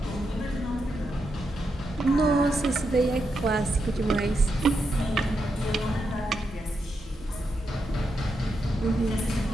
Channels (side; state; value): both; normal; correlation 0.84